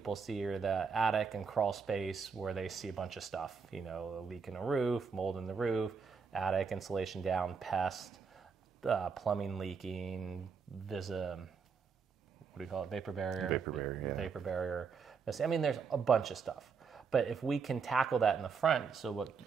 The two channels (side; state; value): left; quieter; 5.7 dB